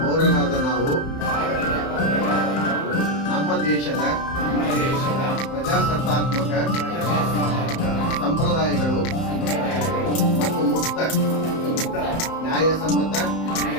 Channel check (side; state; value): right; late; 31 ms